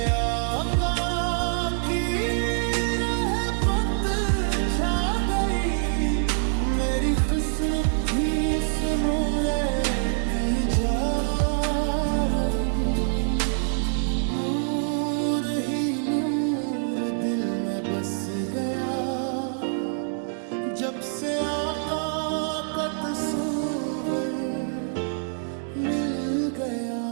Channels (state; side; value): silent; left; digital silence